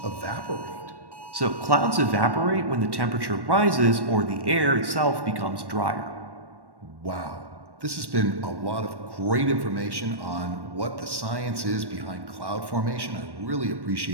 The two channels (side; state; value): left; late; 1.1 ms